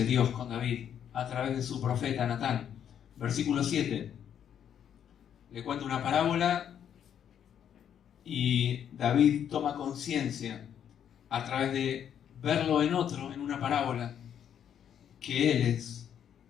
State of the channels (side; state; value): right; quieter; 9.1 dB